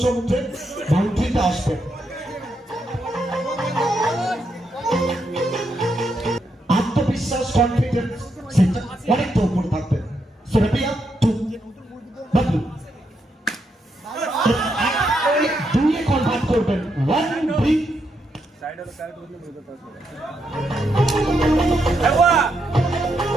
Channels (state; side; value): normal; both; correlation 0.80